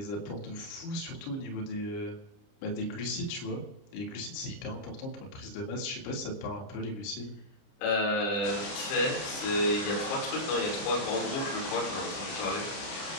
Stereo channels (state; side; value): late; right; 30 ms